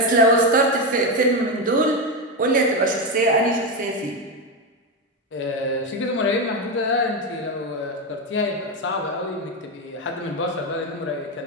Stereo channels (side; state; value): both; normal; correlation 0.11